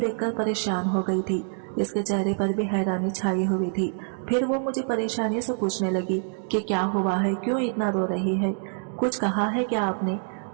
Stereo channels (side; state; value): left; silent; digital silence